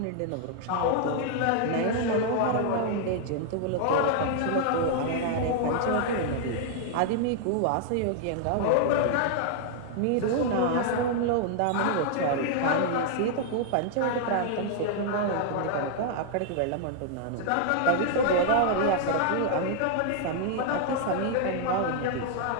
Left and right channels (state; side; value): different; both; correlation 0.00